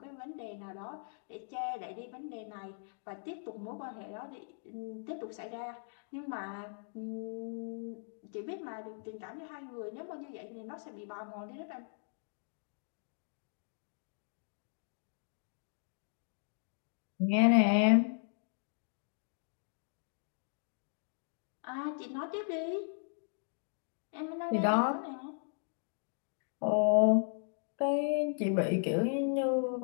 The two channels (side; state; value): right; silent; digital silence